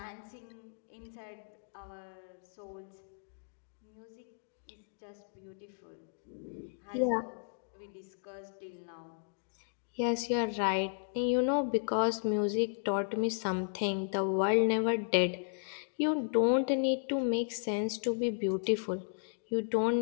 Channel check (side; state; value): right; silent; digital silence